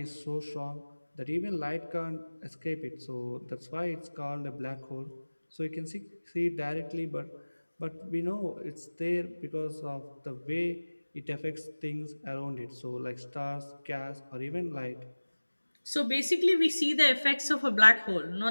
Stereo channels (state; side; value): inverted; both; correlation -1.00